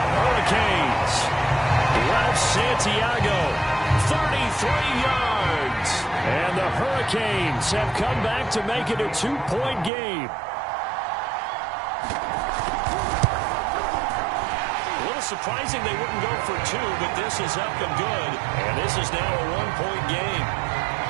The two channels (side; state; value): left; drops out; at 9.9 s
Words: Hurricanes. Ralph Santiago, 33 yards. And the Hurricanes have come back to make it a 2-point game. A little surprising they wouldn't go for 2, but this is up and good. And this is now a 1-point game.